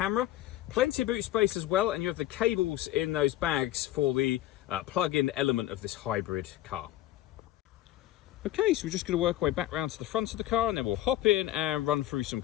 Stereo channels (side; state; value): right; quieter; 14.2 dB